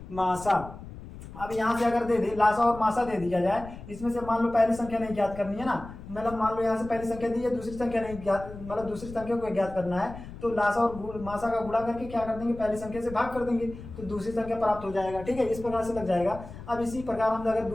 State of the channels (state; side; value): noise; left; rumble, 14 dB below the sound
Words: मासा। अब यहाँ से अगर दे दे लासा और मासा दे दिया जाए, इसमें से मान लो पहली संख्या नहीं ज्ञात करनी है ना, मतलब मान लो यहाँ से पहली संख्या दी है, दूसरी संख्या नहीं ज्ञात, मतलब दूसरी संख्या को ज्ञात करना है, तो लासा और मासा का गुणा करके क्या कर देंगे, पहली संख्या से भाग कर देंगे तो दूसरी संख्या प्राप्त हो जाएगा। ठीक है, इस प्रकार से लग जाएगा। अब इसी प्रकार हम अगर